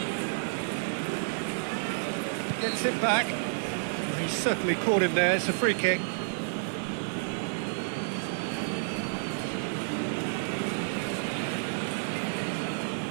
Gets it back. He certainly caught him there. It's a free kick.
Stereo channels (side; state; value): left; silent; 56 dB below the other